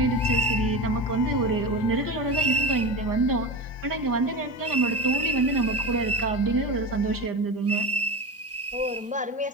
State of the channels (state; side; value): normal; both; correlation 0.25